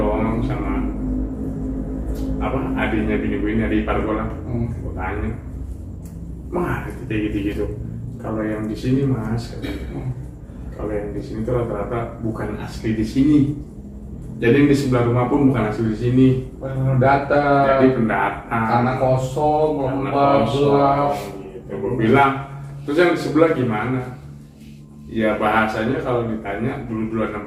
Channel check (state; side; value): identical; both; correlation 1.00